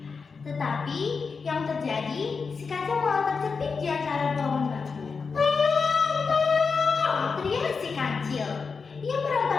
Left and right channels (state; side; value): quieter; right; 5.1 dB